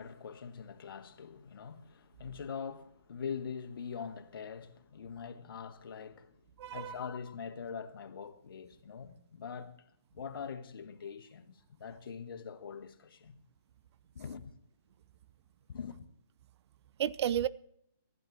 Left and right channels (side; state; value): both; inverted; correlation -0.42